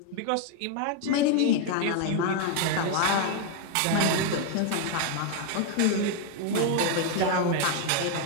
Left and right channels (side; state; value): both; different; correlation 0.01